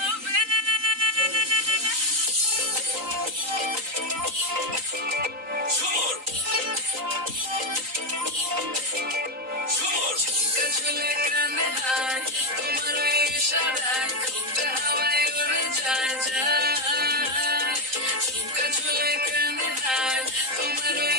ঝুমুর ঝুমুর ঝুমকা ঝুলে কানে হায়, তোমার ওই ইশারায় ঘুমটা হাওয়ায় উড়ে যায় যায়। ঝুমকা ঝুলে কানে হায়, তোমার ওই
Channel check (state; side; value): late; left; 3.9 ms